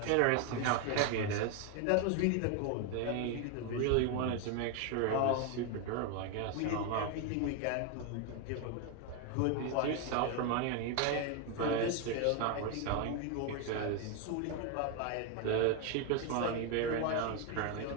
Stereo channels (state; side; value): different; both; correlation 0.01